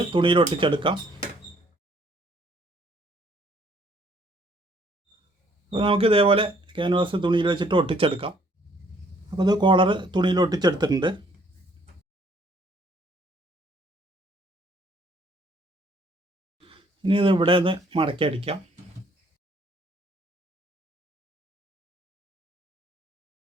തുണിയിൽ ഒട്ടിച്ചെടുക്കാം. അപ്പോൾ നമുക്ക് ഇതേപോലെ ക്യാൻവാസ് തുണിയിൽ വെച്ചിട്ട് ഒട്ടിച്ചെടുക്കാം. അപ്പോൾ ഇത് കോളർ തുണിയിൽ ഒട്ടിച്ചെടുത്തിട്ടുണ്ട്. ഇനി ഇത് ഇവിടെ ഒന്ന് മടക്കി അടിക്കാം.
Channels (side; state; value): both; normal; correlation 0.63